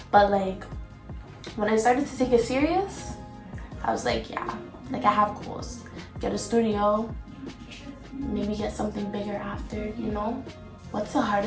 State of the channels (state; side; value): identical; both; correlation 1.00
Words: But like when I started to take it serious, I was like, yeah, like I have goals. Get a studio, maybe get something bigger after, you know? What's the